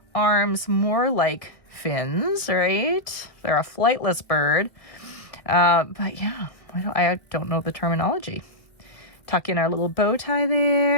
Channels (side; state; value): right; late; 1.7 ms